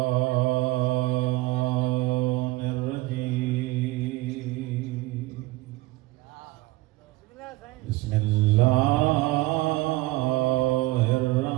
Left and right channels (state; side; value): quieter; left; 20.2 dB